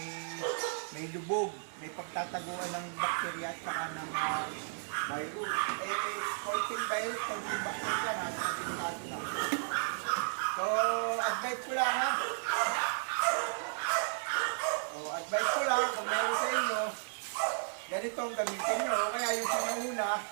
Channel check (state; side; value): silent; left; 55 dB below the other